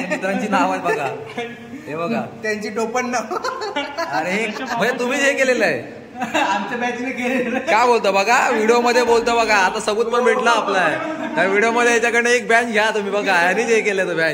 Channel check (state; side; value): identical; both; correlation 1.00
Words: मित्रांची नाव आहेत बघा. हे बघा त्यांची टोपण नाव. अरे म्हणजे तुम्हीच हे केलेलं आहे? आमच्या बॅचने केलेलं. काय बोलतो बघा, व्हिडिओ मध्ये बोलतो बघा. आता सबूत पण भेटला आपला. त्या व्हिडिओ मध्ये याच्याकडे एक बॅच घ्या तुम्ही बघा. आणि हे केलं तो